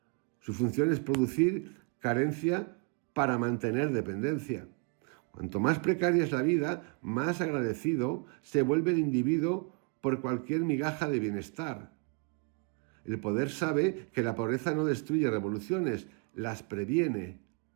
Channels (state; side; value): quieter; left; 35.7 dB